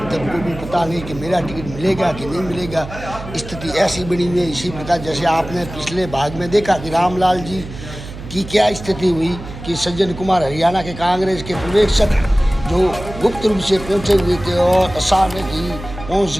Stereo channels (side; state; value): right; noise; hum, 12 dB below the sound